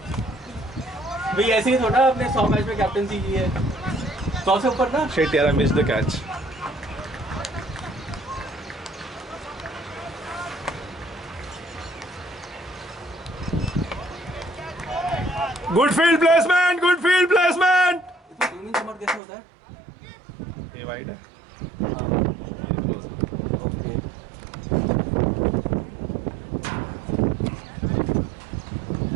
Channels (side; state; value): left; drops out; at 19.2 s